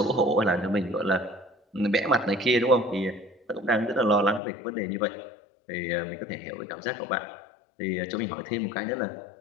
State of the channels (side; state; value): right; drops out; at 4.4 s